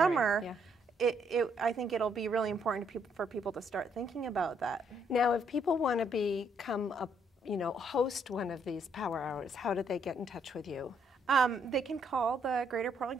I think it'll be really important for people to start thinking about that. Now, if people want to become host one of these power hours, how do they get in touch with you? They can call the Greater Portland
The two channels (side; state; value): both; normal; correlation 0.71